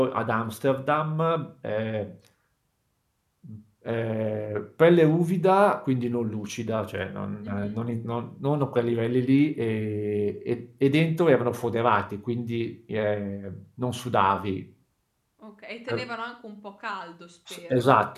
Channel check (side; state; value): both; identical; correlation 1.00